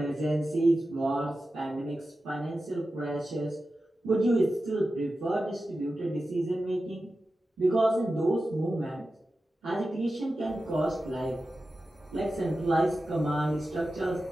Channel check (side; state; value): both; normal; correlation 0.93